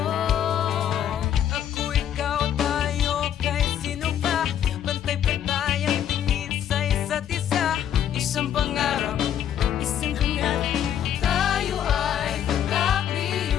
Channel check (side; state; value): right; quieter; 9.9 dB